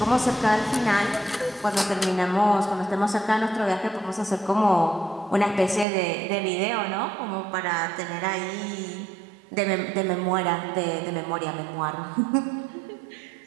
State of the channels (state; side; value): drops out; left; at 5.9 s